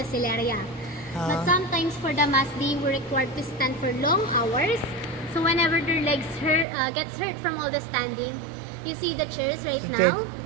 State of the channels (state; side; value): drops out; left; at 6.7 s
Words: celeria. But sometimes for the mass, they were required to stand for long hours. So whenever their legs gets hurt from all the standing, you see the chairs right So now.